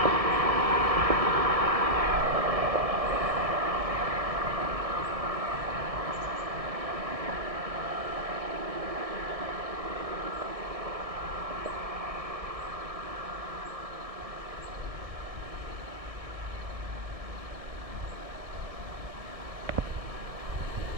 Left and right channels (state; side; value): late; left; 1.6 ms